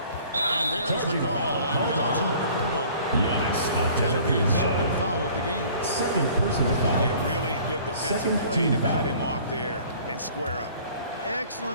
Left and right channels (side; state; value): both; inverted; correlation -0.51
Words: And there's the call on Giannis Antetokounmpo. Giannis That'll be his second Antetokounmpo. foul of the game. Second personal foul. Yeah, really good defensive Second play team to foul. cut him off there and square up.